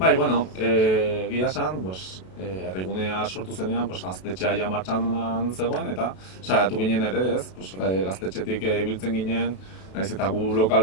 egia esan, Herrigunea sortu zenean gaztetxea ja martxan zegoen eta saiatu ginen ere, gaztetxetik ibiltzen ginen, nahiz eta gu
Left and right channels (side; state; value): right; late; 32 ms